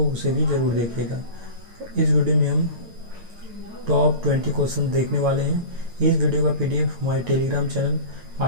उसे भी ज़रूर देखिएगा। इस वीडियो में हम टॉप 20 क्वेश्चन देखने वाले हैं। इस वीडियो का PDF हमारे Telegram channel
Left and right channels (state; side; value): late; left; 8.9 ms